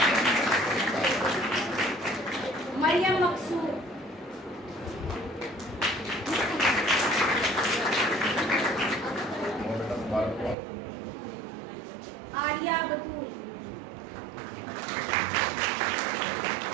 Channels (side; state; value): left; drops out; at 10.6 s